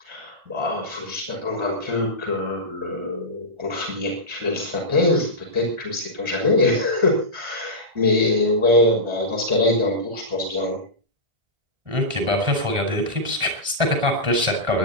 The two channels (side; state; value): left; late; 1.4 ms